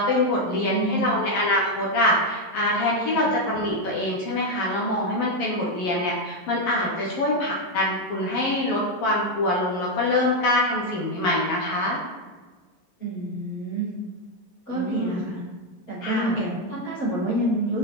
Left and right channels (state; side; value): late; right; 11 ms